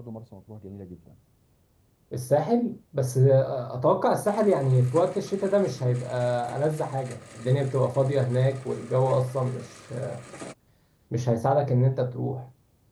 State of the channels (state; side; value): identical; both; correlation 1.00